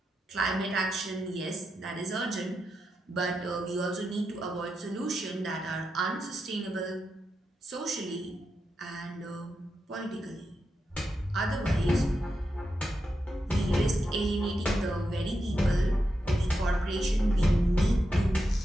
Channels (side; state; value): both; normal; correlation 0.87